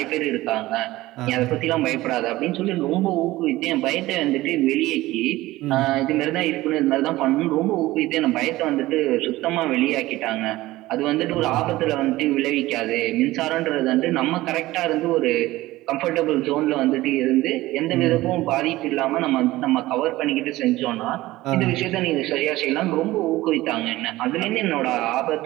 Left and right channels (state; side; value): quieter; left; 17.7 dB